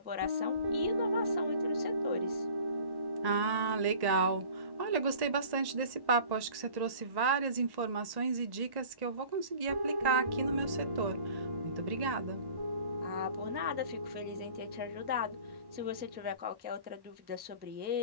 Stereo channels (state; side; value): late; left; 1.1 ms